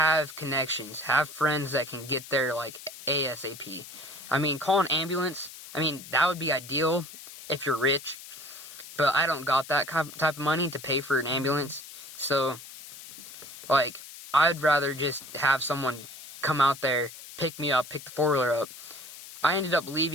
connections. Have friends that can get there, like, ASAP. I mean, call an ambulance. I mean, that would be ideal if you're rich. But I don't got that type of money to pay for an ambulance. So, like, I'd rather just have someone come out there, pick me up, pick the 4-wheeler up. I ended up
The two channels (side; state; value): left; noise; hiss, 15 dB below the sound